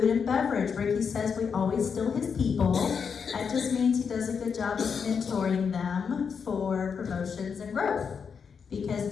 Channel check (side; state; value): right; quieter; 6.3 dB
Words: and beverage. Ricky says we always steal his people. That just means he does a good job of mentoring them for promotions and growth. Because